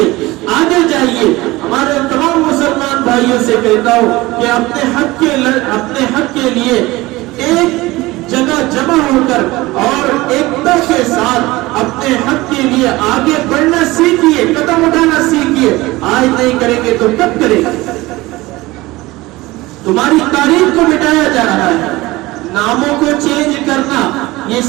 آگے جائیے. ہمارے تمام مسلمان بھائیوں سے کہتا ہوں کہ اپنے حق کے لیے ایک جگہ جمع ہو کر اور ایکتا کے ساتھ اپنے حق کے لیے آگے بڑھنا سیکھیے, قدم اٹھانا سیکھیے. آج نہیں کریں گے تو کب کریں گے؟ تمہاری تاریخ کو مٹایا جا رہا ہے. ناموں کو چینج کرنا, یہ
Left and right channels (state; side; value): quieter; left; 20.1 dB